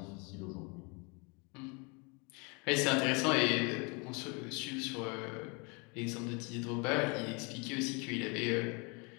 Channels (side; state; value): right; quieter; 31.3 dB